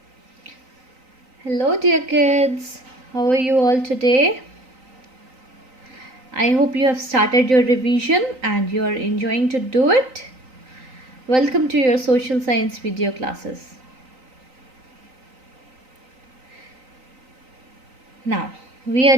Hello dear kids, how are you all today? I hope you have started your revision and you are enjoying to do it. Welcome to your social science video classes. Now, we are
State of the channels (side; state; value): left; late; 3.9 ms